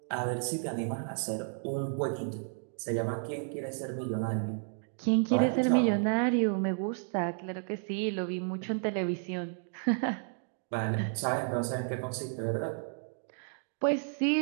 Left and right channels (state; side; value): silent; left; 56 dB below the other